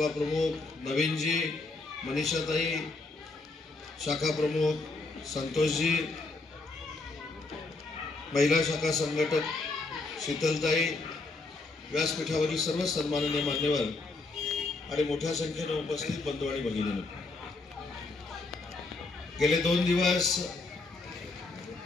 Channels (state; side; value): quieter; right; 3.5 dB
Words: प्रमुख नवीनजी, मनीषाताई, शाखा प्रमुख संतोषजी, महिला शाखा संघटक शीतलताई, व्यासपीठावरील सर्व सन्माननीय मान्यवर आणि मोठ्या संख्येने उपस्थित बंधू आणि भगिनींनो, गेले 2 दिवस